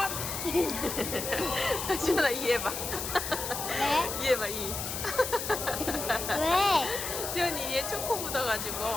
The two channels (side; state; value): left; noise; hiss, 4 dB below the sound